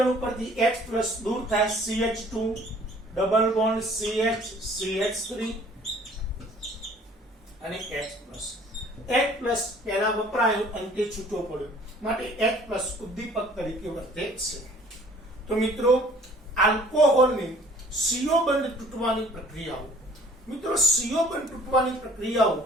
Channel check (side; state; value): both; normal; correlation 0.54